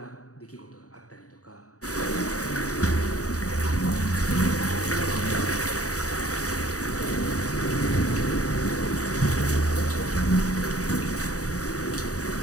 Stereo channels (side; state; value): right; late; 0.66 ms